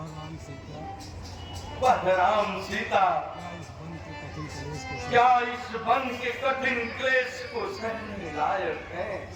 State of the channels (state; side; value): identical; both; correlation 1.00